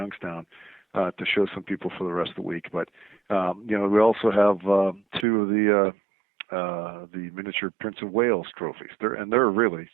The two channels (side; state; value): left; drops out; at 5.2 s